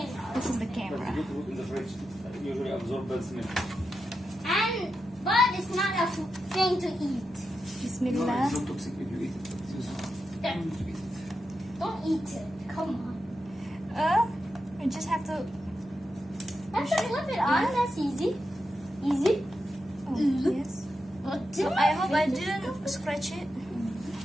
This is the But camera. you put in the fridge. Usually absorb bad smell. But it's not a thing to eat. No, Bismillah. it's not toxic if you eat it. But it's useful. Don't To eat it. eat it. Come on. You just have to. Have to flip it on. That's easy. Easy. Oh, yes. What So I hope I didn't scratch it.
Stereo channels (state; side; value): normal; both; correlation 0.88